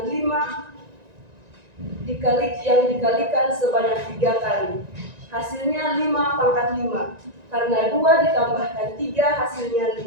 5 yang dikalikan sebanyak 3 kali. Hasilnya 5/5, karena 2 ditambahkan 3 hasilnya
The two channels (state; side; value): late; left; 1.9 ms